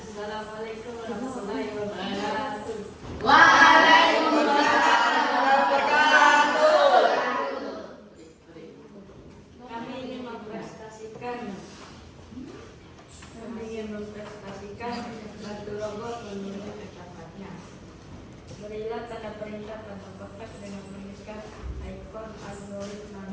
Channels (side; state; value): both; identical; correlation 1.00